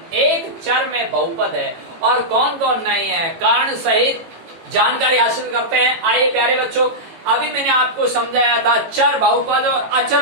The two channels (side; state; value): left; late; 18 ms